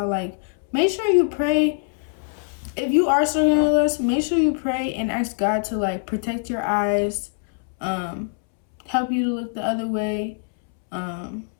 like, make sure you pray. If you are struggling with lust, make sure you pray and ask God to like protect your eyes, help you to look the other way.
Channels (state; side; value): silent; right; 63 dB below the other